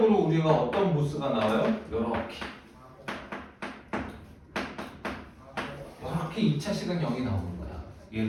우리가 어떤 보스가 나와요? 이렇게 2차식은 0이 나오는 거야.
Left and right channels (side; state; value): both; identical; correlation 1.00